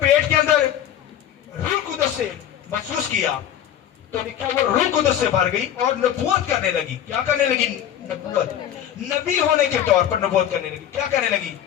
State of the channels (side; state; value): right; quieter; 10.6 dB